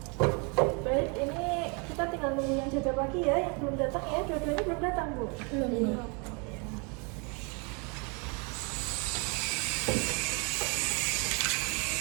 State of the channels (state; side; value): quieter; left; 33.4 dB